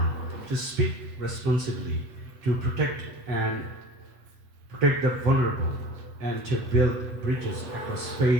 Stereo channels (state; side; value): late; left; 8.2 ms